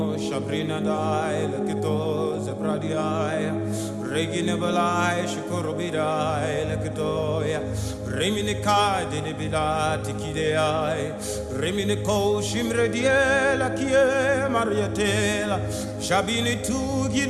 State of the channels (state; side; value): identical; both; correlation 1.00